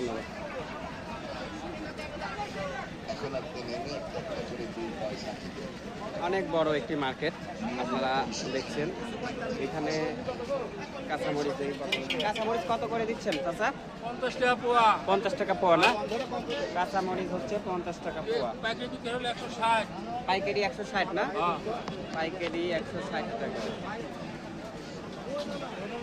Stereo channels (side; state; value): both; identical; correlation 1.00